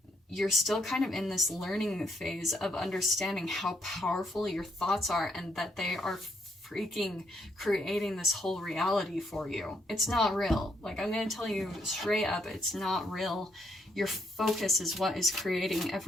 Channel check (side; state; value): both; normal; correlation 0.73